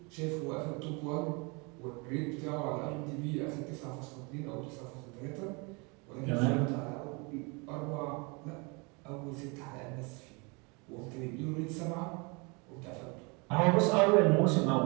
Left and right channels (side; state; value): left; quieter; 30.1 dB